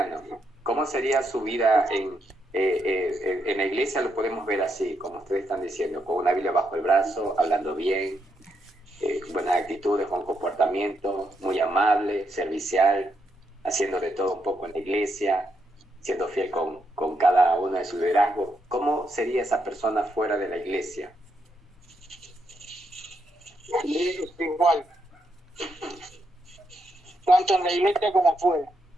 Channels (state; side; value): normal; both; correlation 0.79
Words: ¿Cómo sería su vida en la iglesia? Lo podemos ver así, como ustedes están diciendo, con una Biblia bajo el brazo, hablando bien, buenas actitudes, con comportamiento, muy amable, servicial, haciendo de todo un poco en la iglesia, siendo fiel con cada uno de sus liderazgos. ¿Cómo sería esa persona fuera de la iglesia? Igual. Tanto en la iglesia como fuera.